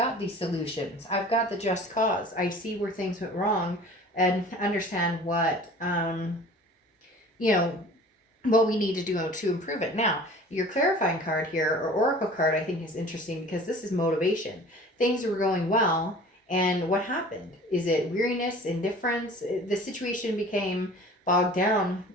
these solutions. I've got the just cause. I see where things went wrong and understand what, what we need to do to improve it. Now, your clarifying card here, or oracle card, I think is interesting because this is motivation. Things were going well, and what happened? Is it weariness, indifference? The situation became bogged down,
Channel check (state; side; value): normal; both; correlation 0.44